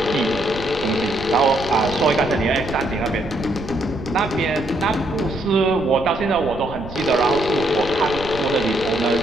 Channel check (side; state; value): right; noise; rumble, 13 dB below the sound